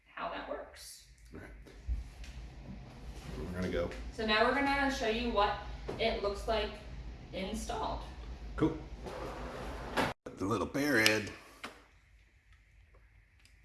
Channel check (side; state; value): both; identical; correlation 1.00